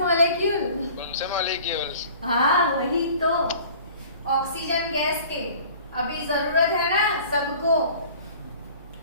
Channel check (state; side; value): inverted; both; correlation -0.47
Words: कौन से मॉलिक्यूल्स? हाँ, वही तो, ऑक्सीजन गैस के। अभी जरूरत है ना सबको,